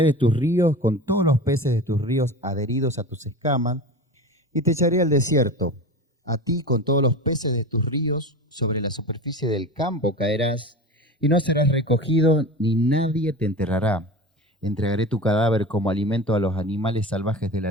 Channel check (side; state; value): both; normal; correlation 0.31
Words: de tus ríos con todos los peces de tus ríos adheridos a tus escamas y te echaré al desierto. A ti con todos los peces de tus ríos sobre la superficie del campo caerás y no serás recogido ni nadie te enterrará. Entregaré tu cadáver como alimento a los animales salvajes de